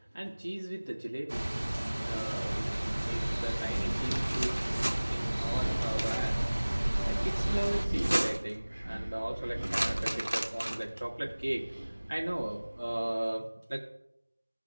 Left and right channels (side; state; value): both; inverted; correlation -1.00